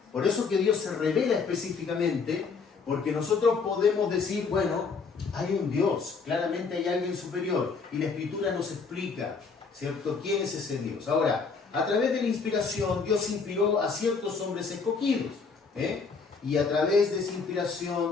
Por eso que Dios se revela específicamente, porque nosotros podemos decir, bueno, hay un Dios, claramente hay alguien superior, y la Escritura nos explica, ¿cierto?, quién es ese Dios. Ahora, a través de la inspiración, Dios inspiró a ciertos hombres escogidos, y a través de esa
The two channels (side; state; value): right; quieter; 5.0 dB